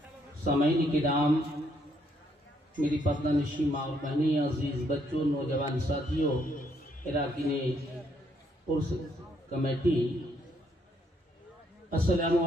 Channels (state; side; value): normal; both; correlation 0.71